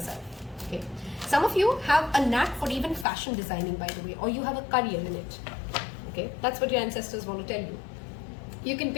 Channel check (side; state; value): right; drops out; at 3.1 s